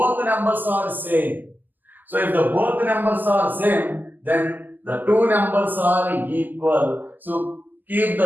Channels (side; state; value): left; late; 0.086 ms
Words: numbers are same. So if the both numbers are same, then the two numbers are equal. So keep